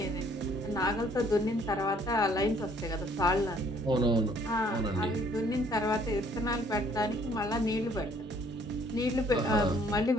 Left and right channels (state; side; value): normal; both; correlation 0.61